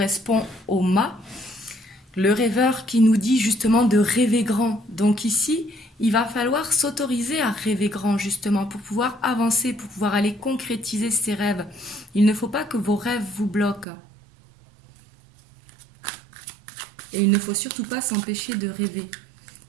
au mât. Le rêveur qui nous dit justement de rêver grand. Donc ici, il va falloir s'autoriser à rêver grand justement pour pouvoir avancer, pour pouvoir aller concrétiser ses rêves. Il ne faut pas que vos rêves vous bloquent. Et il ne faut surtout pas s'empêcher de rêver.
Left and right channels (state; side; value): drops out; left; at 13.9 s